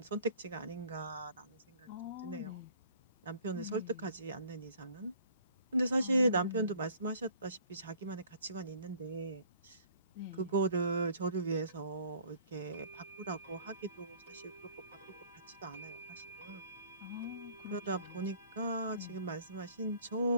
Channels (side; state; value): both; inverted; correlation -0.54